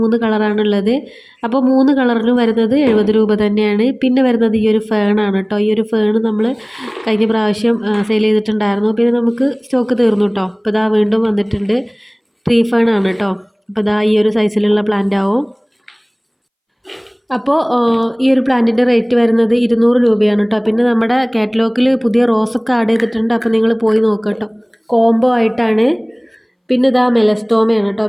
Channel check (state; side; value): identical; both; correlation 1.00